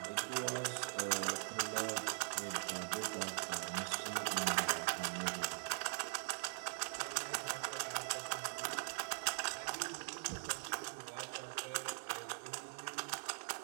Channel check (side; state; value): left; silent; digital silence